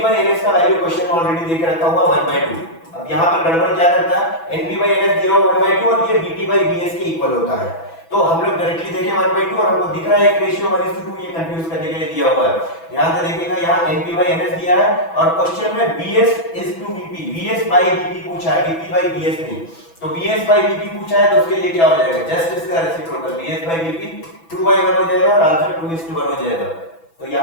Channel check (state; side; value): late; right; 6.0 ms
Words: का वैल्यू क्वेश्चन में ऑलरेडी देके रखा हुआ 1/2। अब यहाँ पर गड़बड़ क्या करता है, NP/NS दिया हुआ 1/2 और ये VP/VS के इक्वल होता है। तो हम लोग डायरेक्टली देखें 1/2 और हमको दिख रहा है एक रेशियो 1:2, ये कंफ्यूज करने के लिए दिया हुआ है। ध्यान से देखिएगा, यहाँ NP/NS दिया है और क्वेश्चन में VS/VP, VS/VP पूछा है, VP/VS नहीं। तो VS/VP पूछा है तो उसके लिए क्या हो जाएगा? जस्ट इसका रेसिप्रोकल VS/VP 2/1 हो जाएगा और आंसर 2:1 हो जाएगा। तो